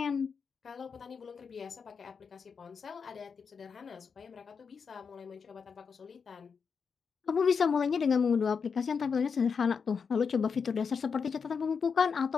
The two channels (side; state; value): right; quieter; 5.9 dB